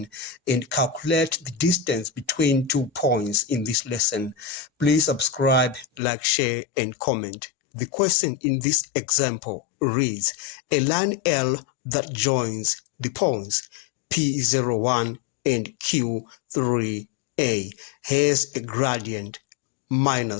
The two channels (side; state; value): right; drops out; at 6.0 s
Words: and calculate the distance between 2 points in this lesson. Please subscribe, like, share, and comment. The question in this example reads, a line L that joins the points P01 and Q3A has a gradient